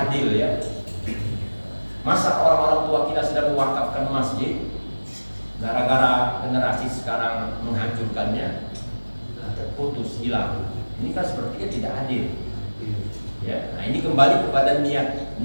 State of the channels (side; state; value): both; inverted; correlation -1.00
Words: ya. Masa orang-orang tua kita sudah mewakafkan masjid, gara-gara generasi sekarang menghancurkannya, terputus, hilang. Ini kan sepertinya tidak adil. Ya, nah ini kembali kepada